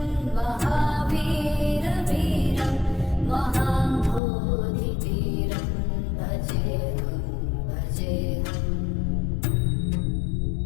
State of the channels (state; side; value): drops out; right; at 4.2 s